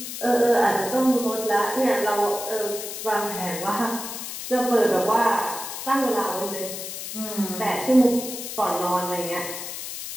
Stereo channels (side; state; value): left; noise; hiss, 8 dB below the sound